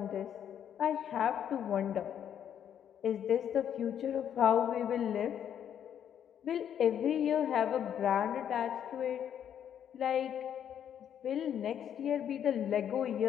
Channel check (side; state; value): right; quieter; 9.3 dB